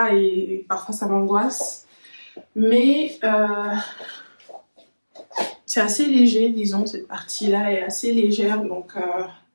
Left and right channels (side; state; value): both; inverted; correlation -1.00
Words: et parfois ça m'angoisse. Mais c'est assez léger, disons, cette partie-là est assez légère, donc